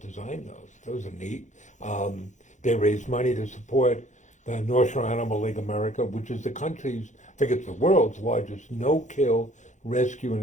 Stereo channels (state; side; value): late; right; 0.35 ms